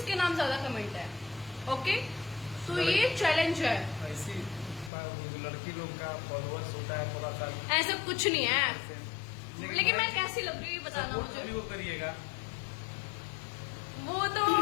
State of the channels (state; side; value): drops out; right; at 4.9 s